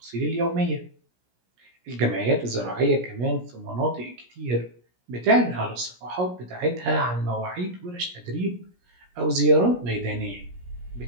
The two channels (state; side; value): late; left; 17 ms